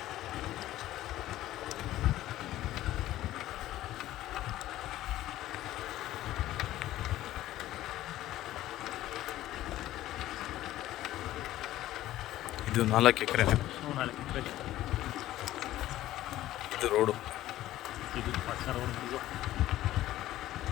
4 ಎಕರೆ. ಇದು ರೋಡು. ಇದು ಪಕ್ಕ ರೋಡ್.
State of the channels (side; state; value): right; quieter; 14.6 dB